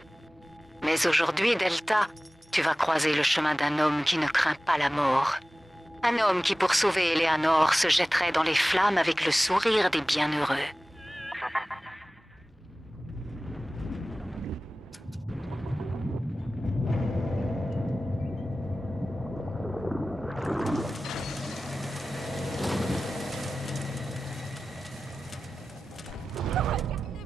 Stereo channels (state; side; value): normal; both; correlation 0.96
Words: Mais aujourd'hui, Delta, tu vas croiser le chemin d'un homme qui ne craint pas la mort. Un homme qui, pour sauver Eleanor, se jetterait dans les flammes avec le sourire des bienheureux.